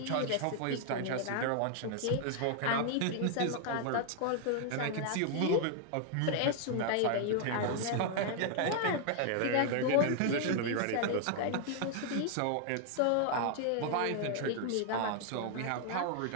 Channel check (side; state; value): both; different; correlation 0.00